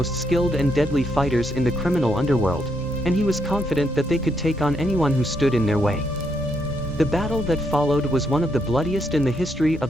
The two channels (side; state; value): both; normal; correlation 0.77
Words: skilled and deadly fighters in the criminal underworld, and he was confident that they could take on anyone who stood in their way. The battle that followed was one of the bloodiest in the history